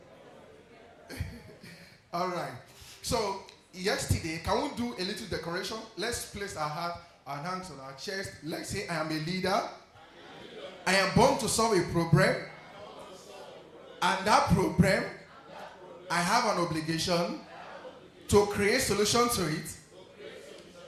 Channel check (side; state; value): both; identical; correlation 1.00